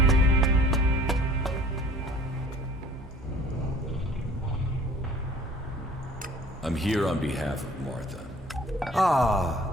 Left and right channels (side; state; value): both; normal; correlation 0.51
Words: I'm here on behalf of Martha.